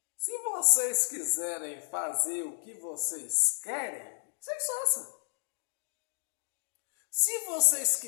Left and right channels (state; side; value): silent; right; digital silence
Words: Se vocês quiserem fazer o que vocês querem, vocês façam. Se vocês